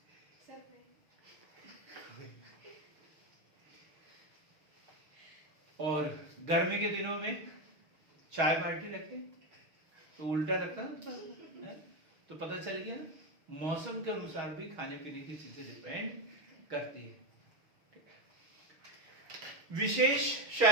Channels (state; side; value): late; left; 6.3 ms